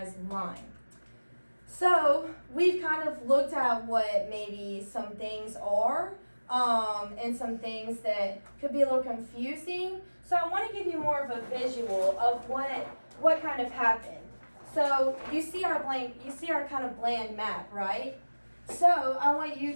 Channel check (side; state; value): both; inverted; correlation -1.00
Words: line. So we've kind of looked at what maybe some things are, and some things that could be a little confusing. So I want to give you more of a visual of what kind of happened. So you see our kind of bland map, right? So I want you